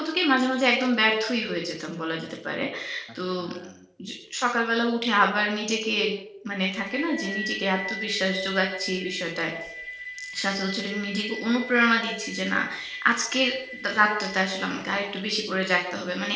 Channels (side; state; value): both; identical; correlation 1.00